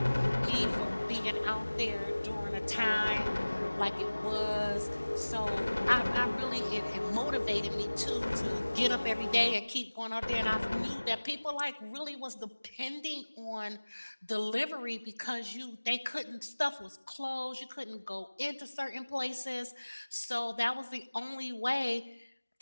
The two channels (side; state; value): both; inverted; correlation -1.00